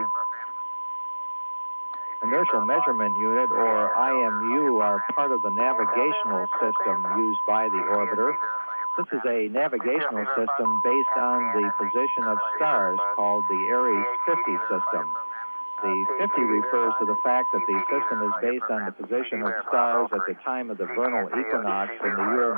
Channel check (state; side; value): inverted; both; correlation -1.00